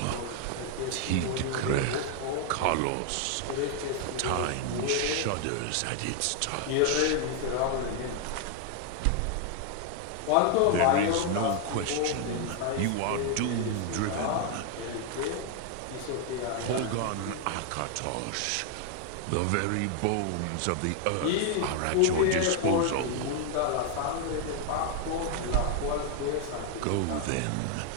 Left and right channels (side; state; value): both; different; correlation 0.00